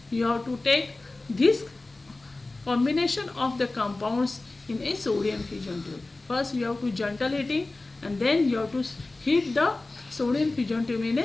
you have to take this combination of the compounds in a sodium fusion tube. First you have to gentle heating, and then you have to heat the sodium fusion tube in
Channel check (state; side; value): quieter; right; 3.1 dB